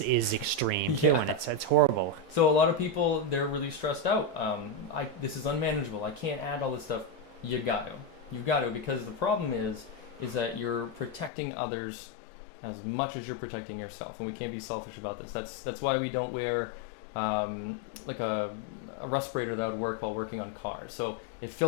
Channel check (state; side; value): drops out; right; at 11.3 s